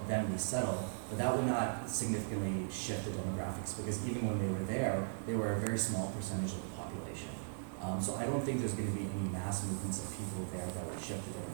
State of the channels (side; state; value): left; silent; digital silence